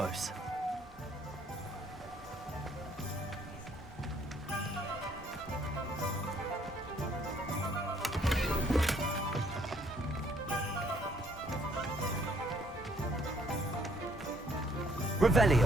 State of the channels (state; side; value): normal; both; correlation 0.65